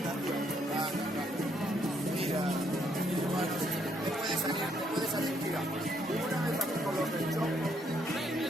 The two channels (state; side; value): normal; both; correlation 0.71